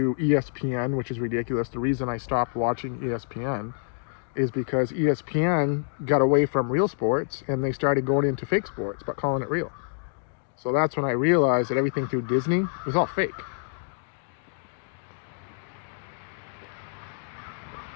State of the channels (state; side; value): silent; right; digital silence